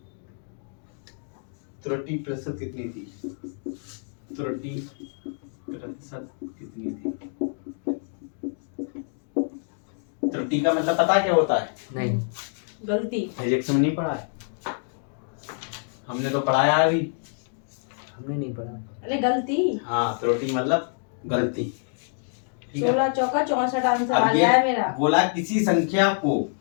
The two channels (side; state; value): right; silent; 61 dB below the other